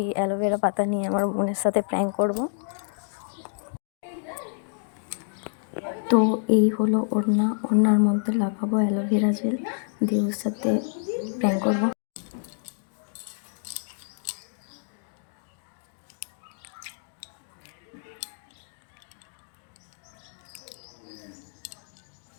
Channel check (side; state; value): right; silent; digital silence